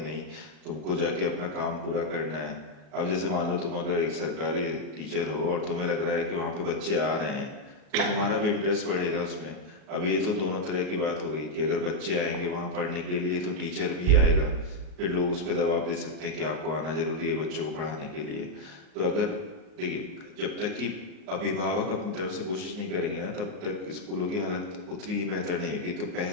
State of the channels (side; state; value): left; late; 39 ms